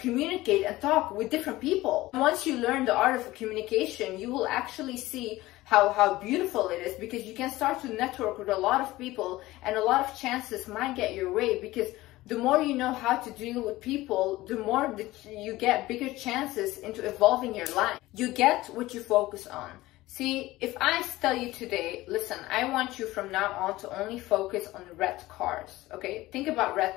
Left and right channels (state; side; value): quieter; right; 17.9 dB